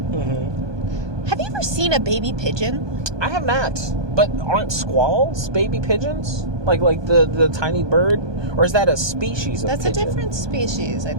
Have you ever seen a baby pigeon? I have not. But aren't squalls baby pigeons? Like the tiny bird? Or is that a species of pigeon? That's a different species, I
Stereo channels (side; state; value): left; late; 1.2 ms